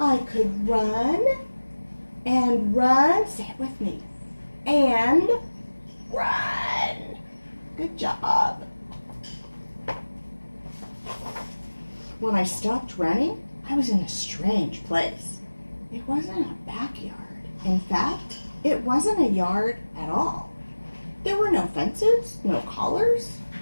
could run and run, say it with me, and run. Good job. When I stopped running, I was in a strange place. It wasn't a backyard. In fact, it wasn't a yard at all. There were no fences, no collars,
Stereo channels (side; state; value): both; inverted; correlation -1.00